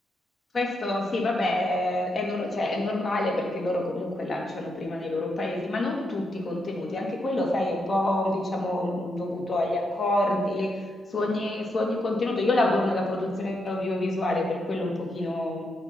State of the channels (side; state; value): both; normal; correlation 0.81